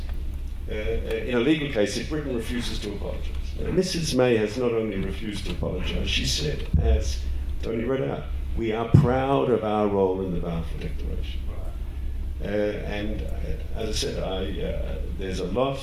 in a legal case if Britain refuses to apologize. Now, Mrs. May has not only refused to apologize, she said, as Tony read out, we are proud of our role in the Balfour Declaration. And as I said, there's a lot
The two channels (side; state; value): both; identical; correlation 1.00